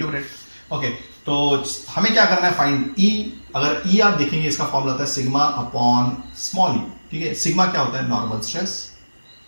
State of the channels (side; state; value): both; inverted; correlation -1.00